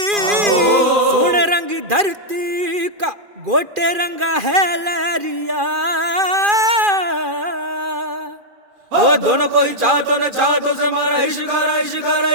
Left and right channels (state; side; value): late; left; 2.4 ms